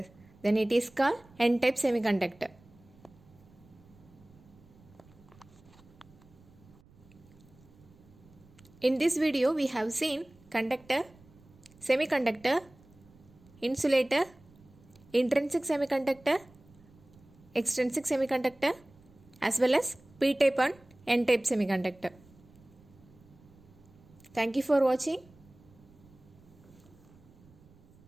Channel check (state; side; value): noise; right; rumble, 26 dB below the sound